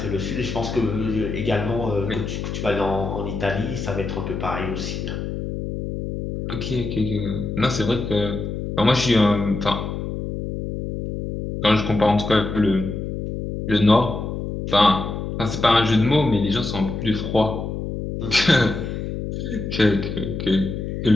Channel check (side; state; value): left; noise; hum, 5 dB below the sound